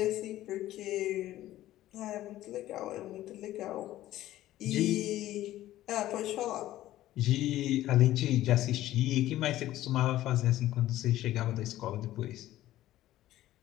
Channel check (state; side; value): quieter; right; 14.5 dB